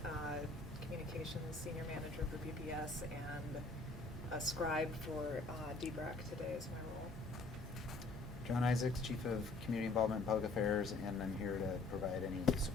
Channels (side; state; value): right; quieter; 3.4 dB